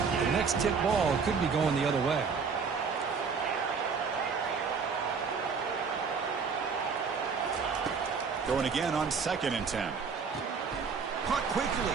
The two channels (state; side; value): quieter; left; 5.5 dB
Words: The next tip ball could be going the other way. Throwing again on 2nd and 10. Caught quickly.